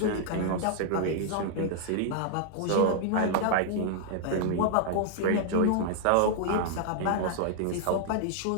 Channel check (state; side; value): different; both; correlation -0.01